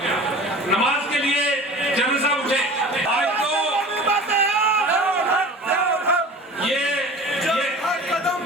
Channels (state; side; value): normal; both; correlation 0.39